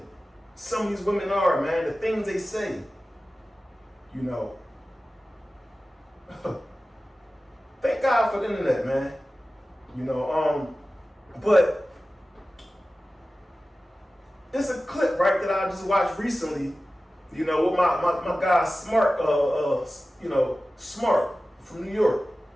some of these women are, man. The things they say, Thank God for the internet, man. But it's a clip, right, that I just watched recently, with my guy Smart, Smart from New York.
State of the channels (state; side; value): normal; both; correlation 0.95